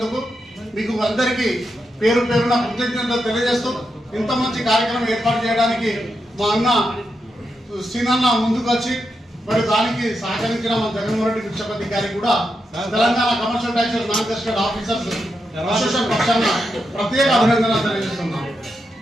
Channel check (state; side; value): normal; both; correlation 0.85